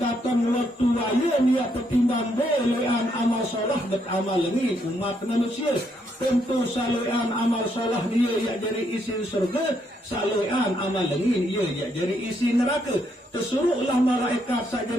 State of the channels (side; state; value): both; normal; correlation 0.75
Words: waktu waya niat petimbang belean amal solah dan amal ini umat manusia. Tentu saluan amal solah dia ia jadi isi surga, saluan amal ini ia jadi isi neraka. Tersuruhlah malaikat